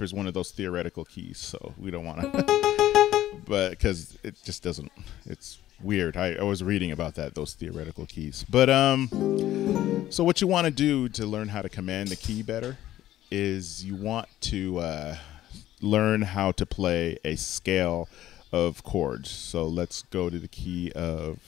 is one of those theoretical keys, so we don't want to, but because it just doesn't, it's weird. I was reading about those theoretical keys. But so what you want to do to learn how to command the key better is you want to learn how to play a scale of chords. So let's go to the key of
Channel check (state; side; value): quieter; right; 13.6 dB